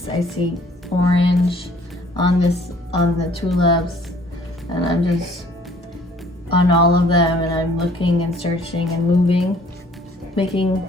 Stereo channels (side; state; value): both; normal; correlation 0.57